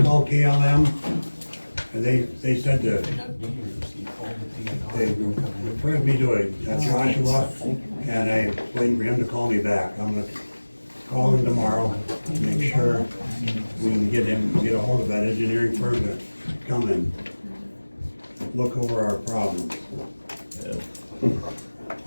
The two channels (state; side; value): inverted; both; correlation -1.00